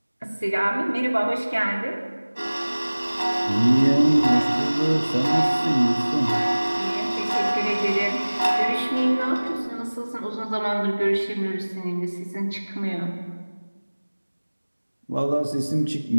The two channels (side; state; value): both; inverted; correlation -1.00